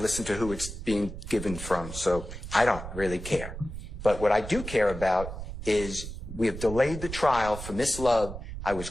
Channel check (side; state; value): right; noise; rumble, 9 dB below the sound